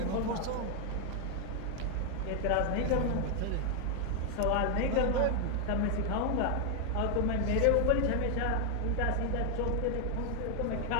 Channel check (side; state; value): both; different; correlation 0.01